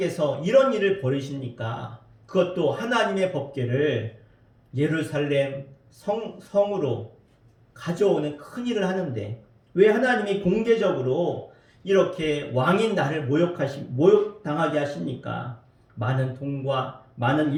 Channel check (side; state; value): both; identical; correlation 1.00